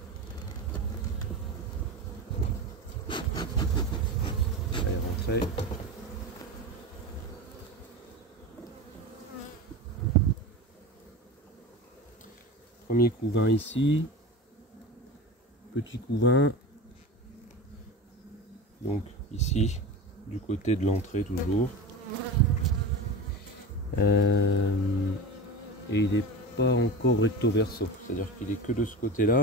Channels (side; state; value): both; normal; correlation 0.28